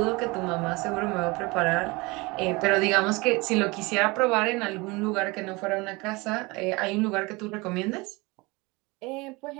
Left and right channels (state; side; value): quieter; left; 24.7 dB